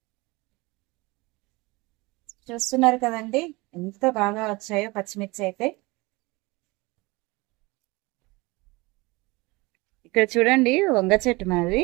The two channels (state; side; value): quieter; left; 23.9 dB